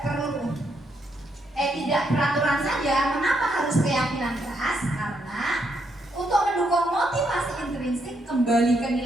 tidak peraturan saja? Mengapa harus keyakinan kelas? Karena untuk mendukung motivasi intrinsik kembali ke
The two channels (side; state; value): both; normal; correlation 0.76